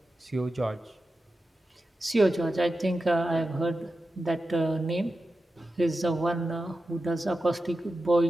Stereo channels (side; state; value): both; normal; correlation 0.92